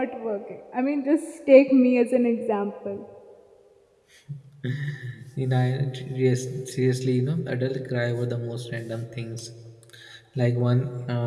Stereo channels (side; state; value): both; identical; correlation 1.00